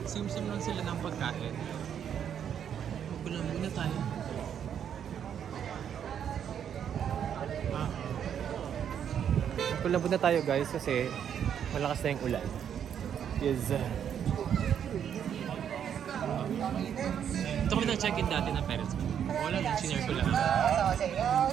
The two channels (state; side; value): quieter; left; 8.8 dB